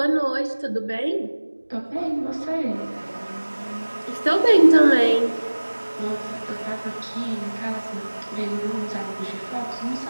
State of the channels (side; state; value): both; inverted; correlation -1.00